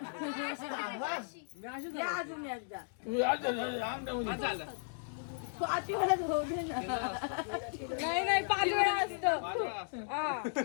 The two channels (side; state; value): right; silent; digital silence